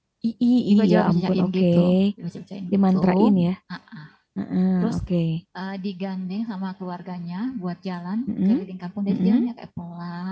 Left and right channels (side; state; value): both; identical; correlation 1.00